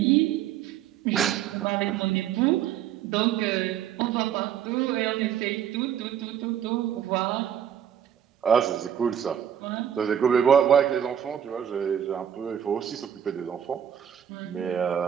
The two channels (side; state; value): left; quieter; 9.4 dB